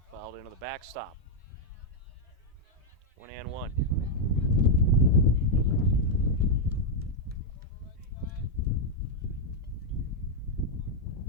Fouled into the backstop. 1-1.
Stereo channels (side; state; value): both; normal; correlation -0.02